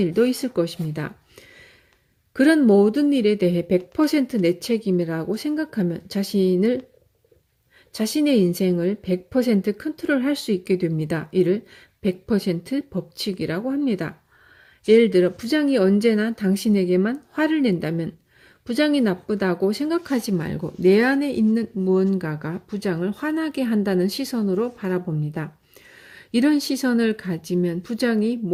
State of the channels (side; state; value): both; identical; correlation 1.00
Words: 있을 것입니다. 그런 모든 일에 대해 100% 내 책임이라고 생각하면 자신의 인생을 100% 컨트롤할 수 있게 됩니다. 이를 100% 법칙이라고 합니다. 예를 들어 부장이 언제나 당신에게만 화를 낸다면 부장이 나쁘다고 생각하지 말고 내 안에 있는 무언가가 부장을 화나게 한다는 시선으로 바라봅니다. 이런 시선을 가지면 부장이